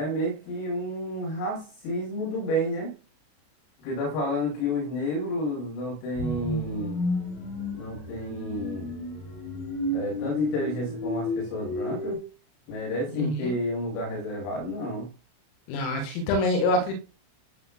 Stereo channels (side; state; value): right; late; 33 ms